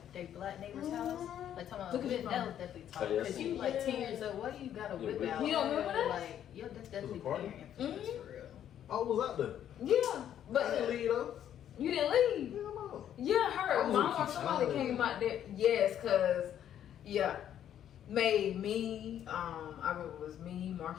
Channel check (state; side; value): quieter; right; 10.3 dB